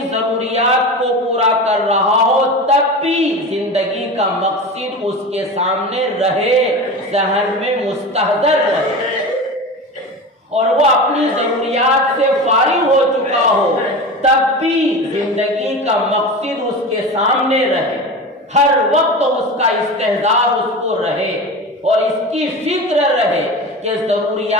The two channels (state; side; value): normal; both; correlation 0.29